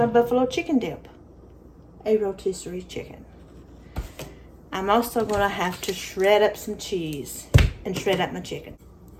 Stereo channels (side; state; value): both; identical; correlation 1.00